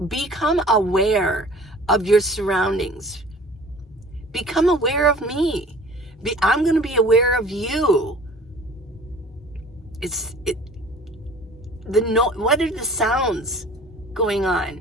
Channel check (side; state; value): both; normal; correlation 0.47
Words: become aware of your surroundings. Become aware of me. I'm going to be aware of you. What are the sounds going